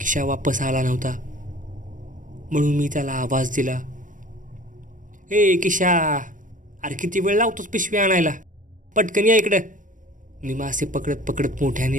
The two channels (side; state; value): left; late; 0.38 ms